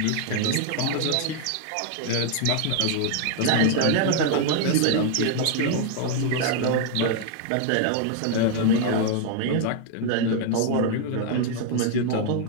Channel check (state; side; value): different; both; correlation 0.00